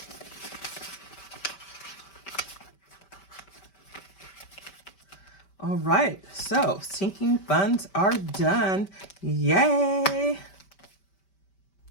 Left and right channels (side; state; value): right; late; 5.2 ms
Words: All right, so sinking funds are done. Yay!